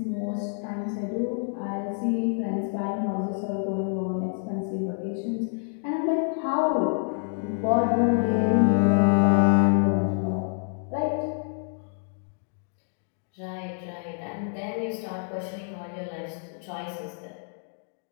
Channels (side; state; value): right; silent; 60 dB below the other